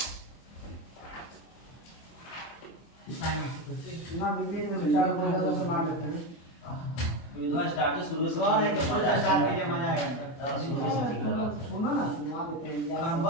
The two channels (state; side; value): late; right; 24 ms